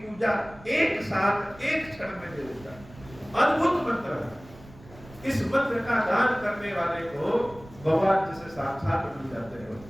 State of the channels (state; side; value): noise; right; rumble, 20 dB below the sound